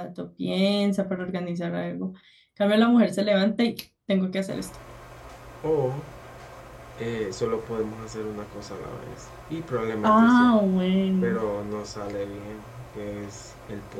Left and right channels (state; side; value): identical; both; correlation 1.00